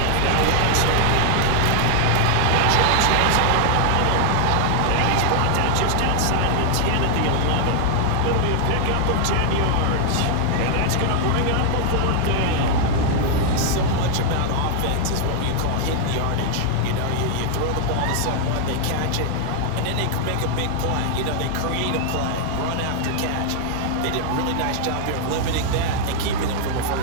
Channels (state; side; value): different; both; correlation 0.00